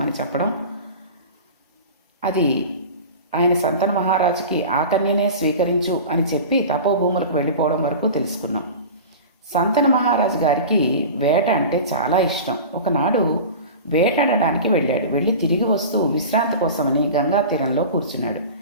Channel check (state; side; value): inverted; both; correlation -0.33